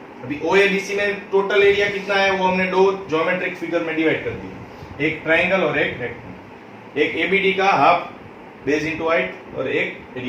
अभी ओ ए बी सी में टोटल एरिया कितना है, वो हमने दो ज्योमेट्रिक फिगर में डिवाइड कर दिया, एक ट्राइंगल और एक रेक्टेंगल, एक एबीडी का हाफ बेस इनटू हाइट और एक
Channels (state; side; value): identical; both; correlation 1.00